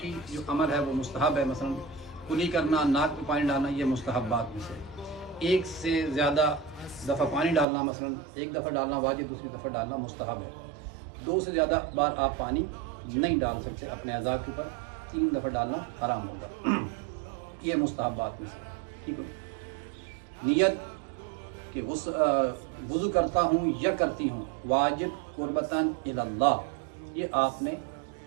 जो अमल है वो मुस्तहब है। मसलन कुली करना, नाक में पानी डालना, ये मुस्तहबात में से। एक से ज़्यादा दफ़ा पानी डालना, मसलन एक दफ़ा डालना वाजिब, दूसरी दफ़ा डालना मुस्तहब है। 2 से ज़्यादा बार आप पानी नहीं डाल सकते अपने अज़ा के ऊपर। 3 दफ़ा डालना हराम होगा। ये मुस्तहबात में से। ठीक है। नियत कि वुज़ू करता हूँ या करती हूँ वाजिब कुर्बतन इल्लल्लाह, ये आपने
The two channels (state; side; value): drops out; left; at 7.7 s